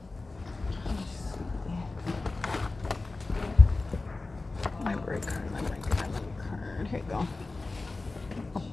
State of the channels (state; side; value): quieter; right; 3.4 dB